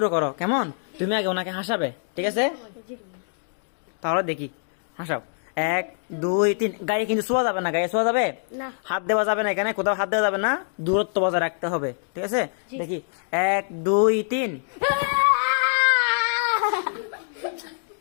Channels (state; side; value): silent; right; digital silence